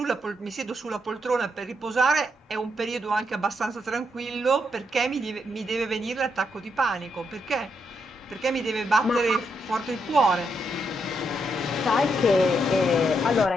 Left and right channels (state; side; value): normal; both; correlation 0.79